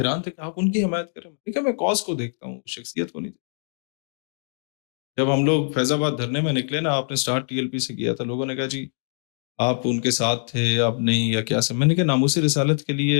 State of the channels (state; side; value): silent; right; digital silence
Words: تھے کہ آپ ان کی حمایت کریں. ٹھیک میں کاز کو دیکھتا ہوں، شخصیت کو نہیں. جب ہم لوگ فیض آباد دھرنے میں نکلے نا، آپ نے سٹارٹ ٹی ایل پی سے کیا تھا، لوگوں نے کہا جی آپ ان کے ساتھ تھے، آپ نہیں یا کیا سے. میں نے کہا ناموس رسالت کے